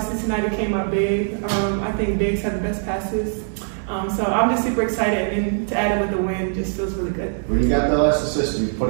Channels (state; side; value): silent; left; digital silence